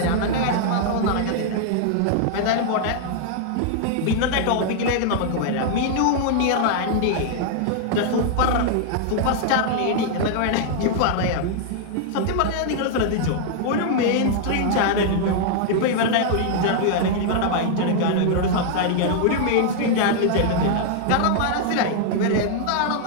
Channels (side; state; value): both; different; correlation -0.01